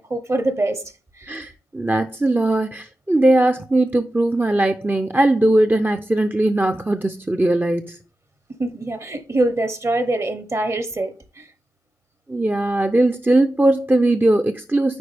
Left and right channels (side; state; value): both; normal; correlation 0.93